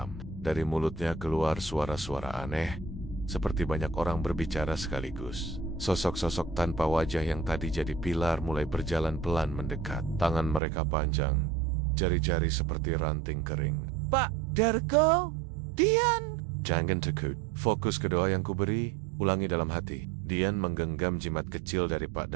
Dari mulutnya keluar suara-suara aneh, seperti banyak orang berbicara sekaligus. Sosok-sosok tanpa wajah yang tadi jadi pilar mulai berjalan pelan mendekat. Tangan mereka panjang, jari-jari seperti ranting kering. "Pak Dargo, Dian." "Jangan takut, fokus ke doa yang kuberi, ulangi dalam hati." Dian menggenggam jimat kecil dari Pak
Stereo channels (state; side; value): drops out; left; at 10.6 s